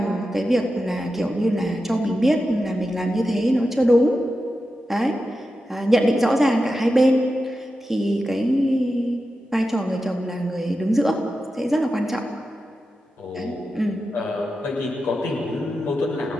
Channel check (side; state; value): both; normal; correlation 0.91